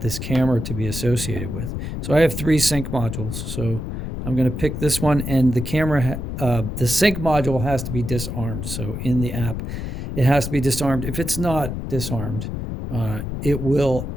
camera to be associated with. So I have 3 sync modules, so I'm going to pick this one, and the camera, the sync module has to be disarmed. So in the app, it has to be disarmed. If it's not disarmed, it will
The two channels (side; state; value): left; noise; rumble, 5 dB below the sound